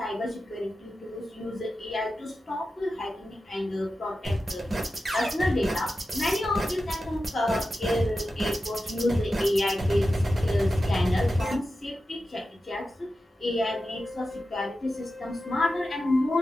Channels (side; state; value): both; normal; correlation 0.92